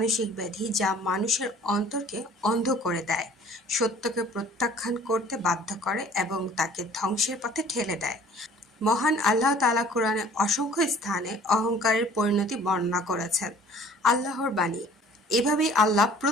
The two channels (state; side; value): normal; both; correlation 0.51